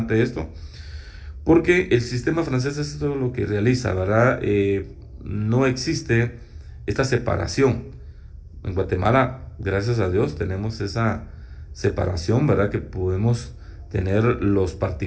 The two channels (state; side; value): identical; both; correlation 1.00